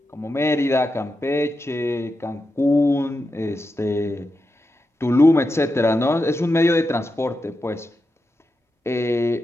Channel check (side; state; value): both; normal; correlation 0.88